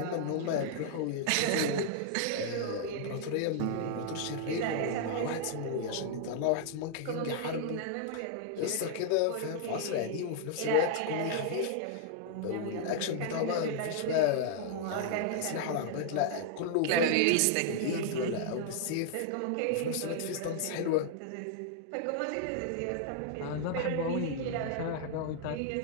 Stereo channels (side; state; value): both; different; correlation -0.01